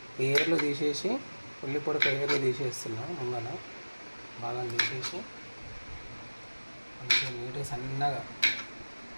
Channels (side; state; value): both; inverted; correlation -1.00